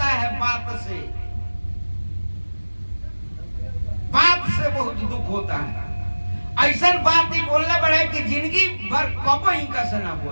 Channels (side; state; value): both; inverted; correlation -1.00